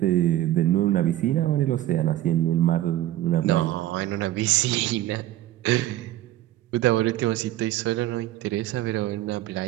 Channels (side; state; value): left; quieter; 14.1 dB